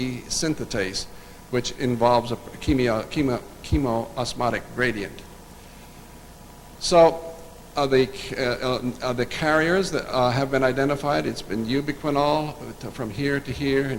synthetase, which involves a chemoosmotic gradient. So the carriers that have been identified, it's been ubiquinol from here to here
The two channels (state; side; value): identical; both; correlation 1.00